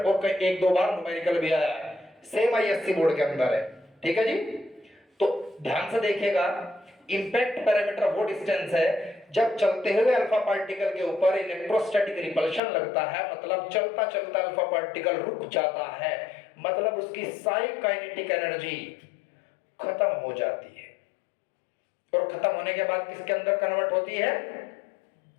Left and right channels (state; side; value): drops out; right; at 12.6 s